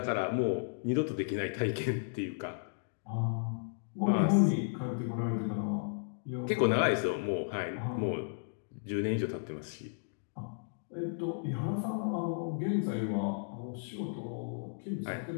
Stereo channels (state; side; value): silent; right; digital silence